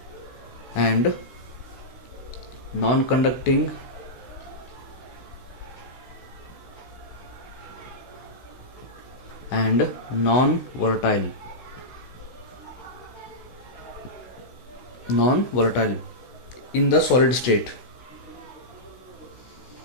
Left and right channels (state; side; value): late; right; 16 ms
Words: and non-conducting and non-volatile in the solid state.